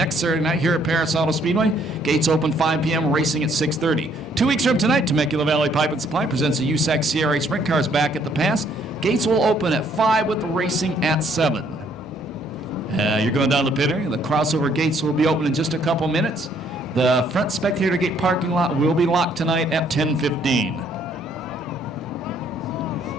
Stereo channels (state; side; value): normal; both; correlation 0.66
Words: Saturday night here at Perris Auto Speedway. Gates open 5 p.m., racing at 6:30. 2 weeks from tonight, Temecula Valley Pipe and Supply presents the USAC CRA Sprint Cars back at the pass. Gates will open at 5 with the racing at 7. You're going down the pit area. The crossover gates will be open in just a couple minutes. The front spectator gate parking lot will be locked tonight at 10:15.